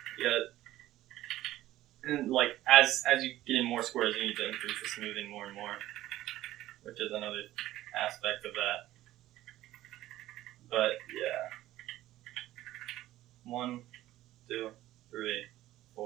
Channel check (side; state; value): left; quieter; 15.0 dB